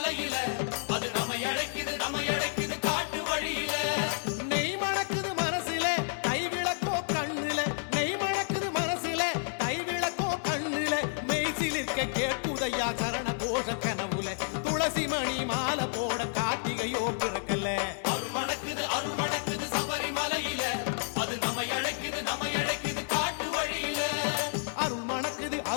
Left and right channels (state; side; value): silent; right; digital silence